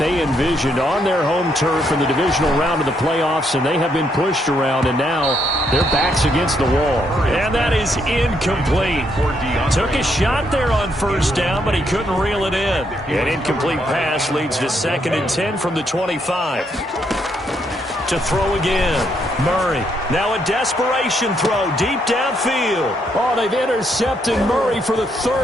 envisioned on their home turf in the divisional round of the playoffs, and they have been pushed around, and now their back's against the wall. And that is incomplete. Took a shot there on first down, but he couldn't reel it in. An incomplete pass leads to 2nd and 10 from the 25. To throw again. Murray. Now a desperation throw deep downfield. Oh, they've intercepted Murray for the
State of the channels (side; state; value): both; normal; correlation 0.75